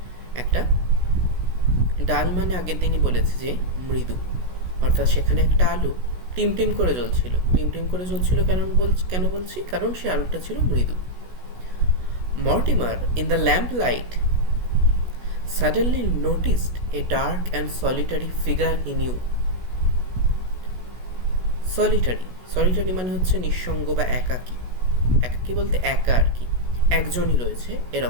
একটা ডাল, মানে আগের দিনই বলেছে যে মৃদু, অর্থাৎ সেখানে একটা আলো টিমটিম করে জ্বলছিল। কেন বলছি? কারণ সে আলোটা ছিল মৃদু। Mortimer in the lamp light suddenly noticed a dark and solitary figure he knew. Solitary মানে হচ্ছে নিঃসঙ্গ বা একাকী। একাকী বলতে একা আর কি, একজনই রয়েছে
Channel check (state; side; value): late; left; 16 ms